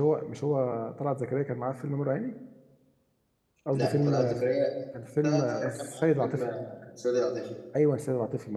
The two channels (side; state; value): both; identical; correlation 1.00